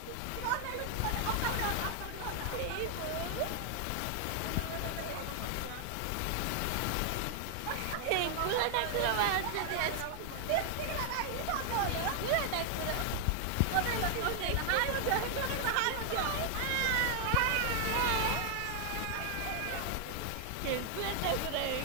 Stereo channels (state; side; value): different; both; correlation 0.00